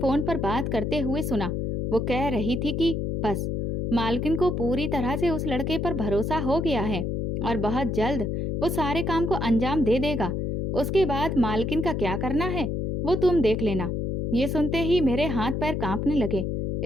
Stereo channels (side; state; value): left; noise; hum, 1 dB below the sound